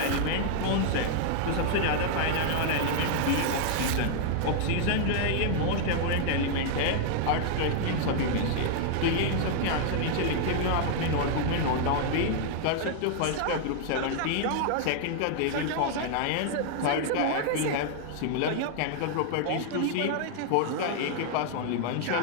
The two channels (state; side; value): different; both; correlation 0.00